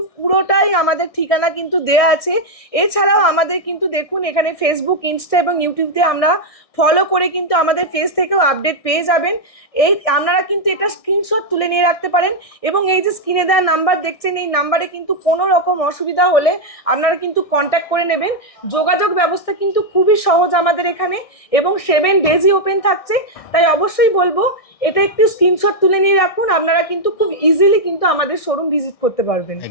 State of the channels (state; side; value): late; right; 1.6 ms